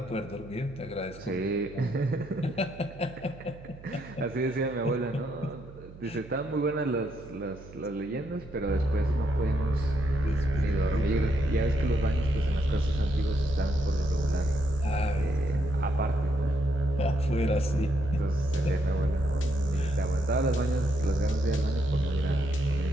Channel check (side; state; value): right; noise; hum, 18 dB below the sound